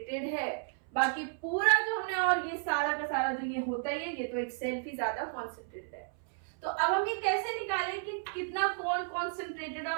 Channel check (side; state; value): left; silent; 56 dB below the other